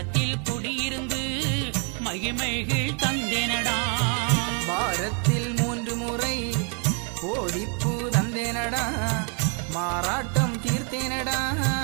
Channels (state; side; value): quieter; left; 39.4 dB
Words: குடியிருந்து மகிமைகள் தந்தேனடா. வாரத்தில் 3 முறை கோடிப்பூ தந்தேனடா. மாறாட்டம் தீர்த்தேனடா.